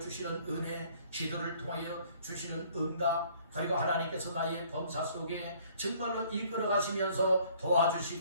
은혜, 기도를 통하여 주시는 응답, 그리고 하나님께서 나의 범사 속에 정말로 이끌어 가시면서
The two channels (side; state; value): both; inverted; correlation -0.59